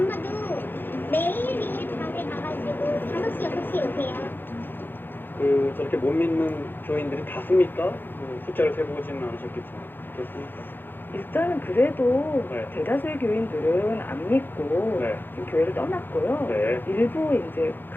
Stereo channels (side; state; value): right; late; 0.097 ms